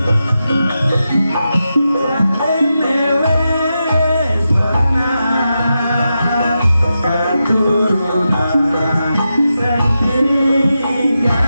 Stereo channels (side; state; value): both; inverted; correlation -0.89